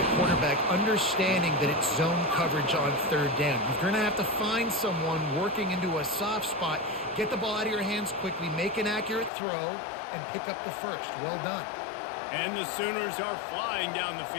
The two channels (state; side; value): drops out; right; at 9.3 s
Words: quarterback, understanding that it's zone coverage on 3rd down. You're going to have to find someone working into a soft spot, get the ball out of your hands quickly, make an accurate throw, and pick up the first. Well done. And the Sooners are flying down the